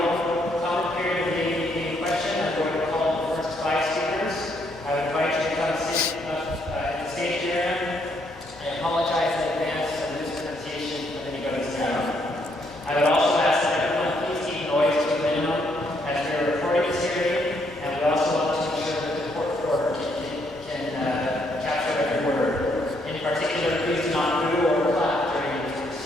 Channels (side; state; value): both; normal; correlation 0.72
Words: oral comment period of the ADEQ question. I'm going to call the first 5 speakers. I would invite you to come sit in the stage area. I apologize in advance for the mispronunciation of anybody's name. I would also ask that everyone please keep noise to a minimum as we are recording this hearing, and we also want to ensure that the court reporter can capture every word. In particular, please do not boo or clap during these